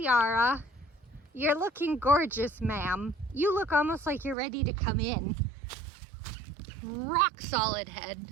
You're looking gorgeous, ma'am. You look almost like you're ready to come in. Rock solid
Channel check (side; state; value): left; drops out; at 4.4 s